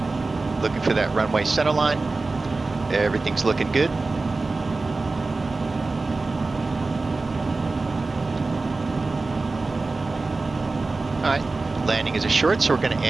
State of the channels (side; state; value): left; quieter; 3.6 dB